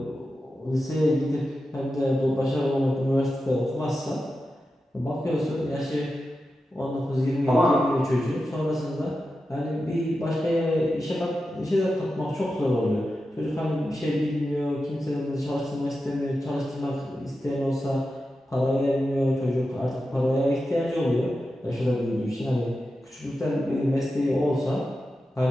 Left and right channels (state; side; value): normal; both; correlation 0.91